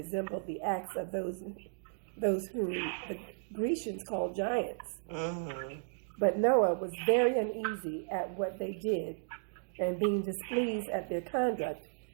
the acts of those whom the Grecians called giants. But Noah was very uneasy at what they did, and being displeased at their conduct,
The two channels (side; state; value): left; silent; digital silence